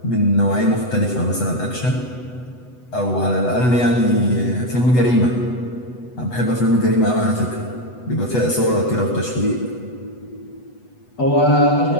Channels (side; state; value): right; late; 8.0 ms